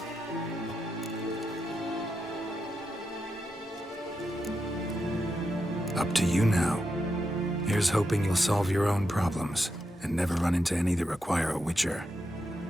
Up to you now. Here's hoping you'll solve your own problems, and never run into any that require a Witcher.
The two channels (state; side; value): normal; both; correlation 0.85